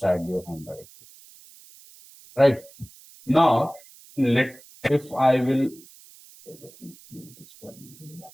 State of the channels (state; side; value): noise; right; hiss, 23 dB below the sound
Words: your home directory. Right? Now, if I will,